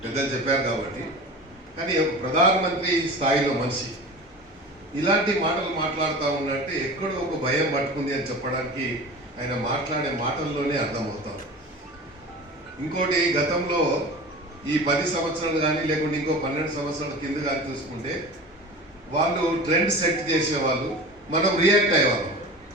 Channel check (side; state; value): both; normal; correlation 0.35